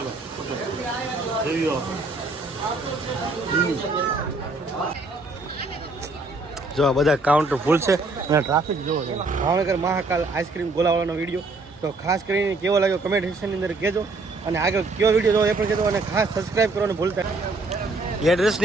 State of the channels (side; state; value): left; quieter; 3.2 dB